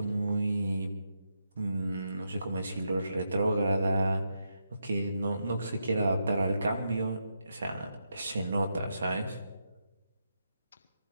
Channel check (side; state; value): both; inverted; correlation -0.83